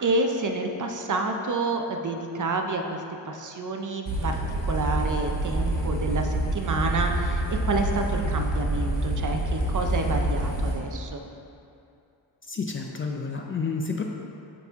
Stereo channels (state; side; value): normal; both; correlation 0.39